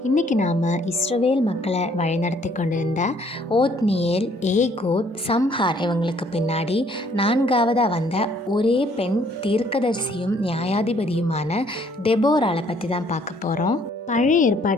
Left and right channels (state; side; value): normal; both; correlation 0.63